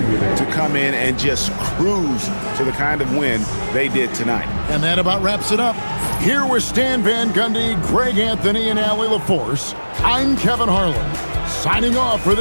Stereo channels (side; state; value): both; inverted; correlation -1.00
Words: to come in and just cruise to the kind of win they did tonight. And that about wraps it up. Here with Stan Van Gundy, Greg Anthony, and Allie LaForce, I'm Kevin Harlan, signing off for